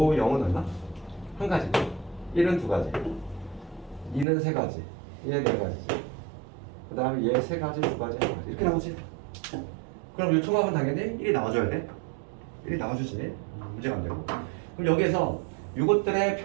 얼마? 한 가지. 1은 두 가지. 2는 세 가지. 얘 네 가지지. 그 다음에 얘 세 가지, 두 가지, 한 가지. 이렇게 나오지? 그럼 이 총합은 당연히 1이 나와줘야 돼. 1이 나와주지. 문제가 안 되고. 그럼 여기에서 이것들의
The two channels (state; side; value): drops out; left; at 4.2 s